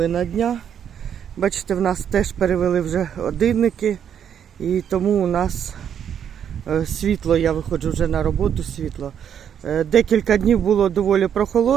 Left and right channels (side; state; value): left; quieter; 8.7 dB